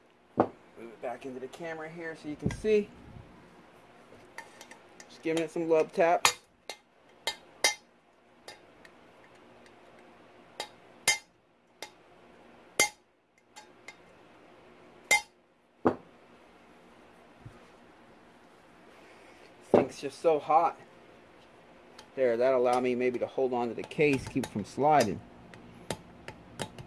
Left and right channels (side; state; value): both; identical; correlation 1.00